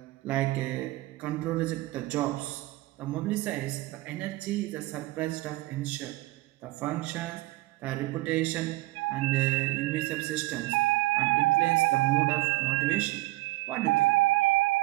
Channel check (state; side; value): quieter; left; 19.3 dB